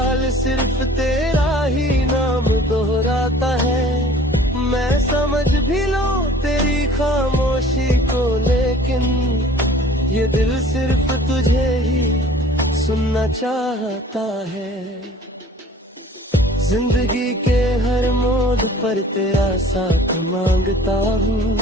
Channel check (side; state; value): both; normal; correlation 0.49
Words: सिर्फ तेरा ही नाम दोहराता है। मैं समझ भी लूं तेरी खामोशी को, लेकिन ये दिल सिर्फ तुझे ही सुनना चाहता है। जिंदगी के हर मोड़ पर तेरा साथ मांगता हूँ,